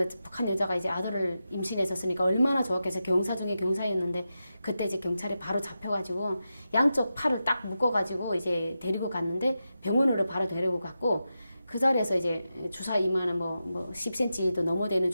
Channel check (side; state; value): both; inverted; correlation -0.90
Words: 북한 여자가 이제 아들을 임신했었으니까 얼마나 좋았겠어요. 경사 중에 경사였는데 그때 이제 경찰에 바로 잡혀가지고 양쪽 팔을 딱 묶어가지고 이제 데리고 갔는데 병원으로 바로 데리고 갔고 그 자리에서 이제 주사 이만한 뭐 10cm도 넘어 되는